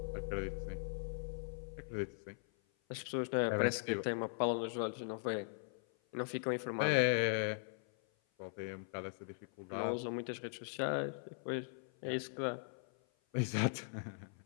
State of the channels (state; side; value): silent; right; 51 dB below the other